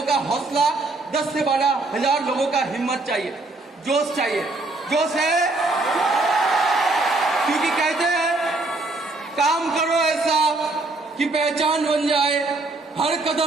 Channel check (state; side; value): quieter; left; 3.2 dB